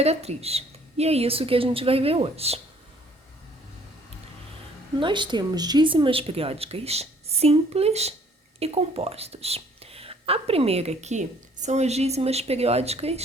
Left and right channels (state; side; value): normal; both; correlation 0.59